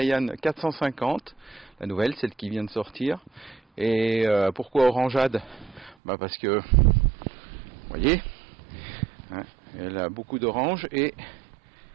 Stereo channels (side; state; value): left; drops out; at 6.0 s